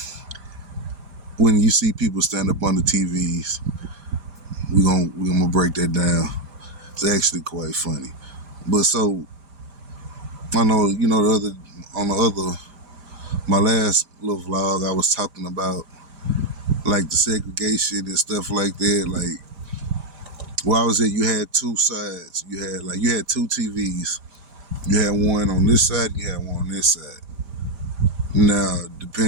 When you see people stand up under TVs, we're gonna break that down. It's actually quite funny. But so I know, my last little vlog, I was talking about like the segregation and stuff like that, like. Where I was at, you had two sides. You had two TVs. You had one on this side, you had one on this side. Now,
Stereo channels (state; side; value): late; left; 5.0 ms